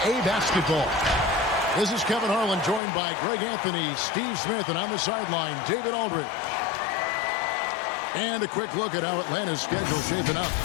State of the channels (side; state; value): right; drops out; at 2.8 s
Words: basketball. This is Kevin Harlan, joined by Greg Anthony, Steve Smith, and on the sideline, David Aldridge. And a quick look at how Atlanta's schedule shaping up.